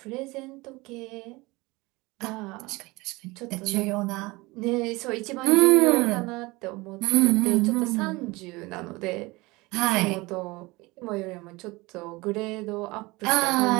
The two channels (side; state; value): left; quieter; 23.0 dB